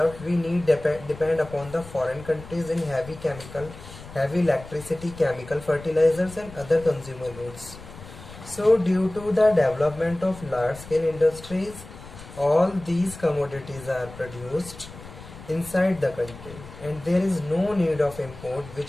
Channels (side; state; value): left; noise; rumble, 16 dB below the sound